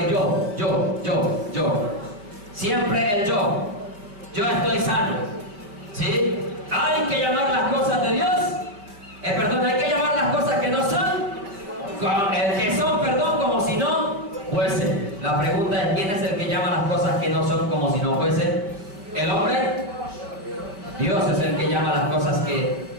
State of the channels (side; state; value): left; late; 5.0 ms